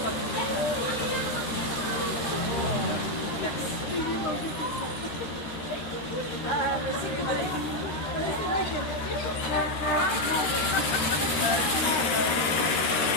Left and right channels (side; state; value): right; late; 13 ms